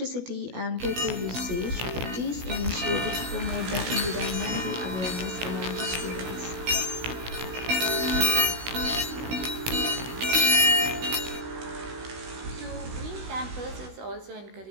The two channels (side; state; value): left; late; 16 ms